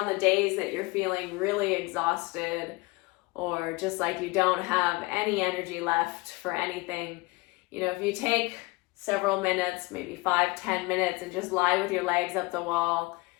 the days that you're feeling really exhausted, or just like you don't have any energy left for anything, if you take several minutes, maybe 5-10 minutes, and just lie with your legs up the wall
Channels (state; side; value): quieter; right; 23.8 dB